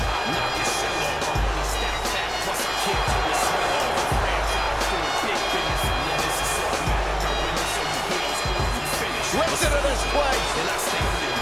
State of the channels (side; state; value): both; identical; correlation 1.00